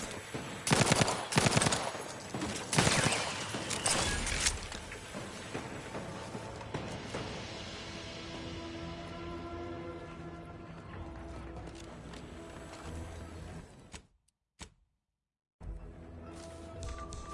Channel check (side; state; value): both; identical; correlation 1.00